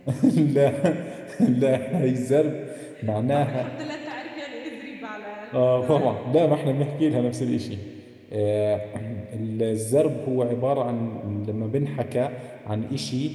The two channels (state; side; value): identical; both; correlation 1.00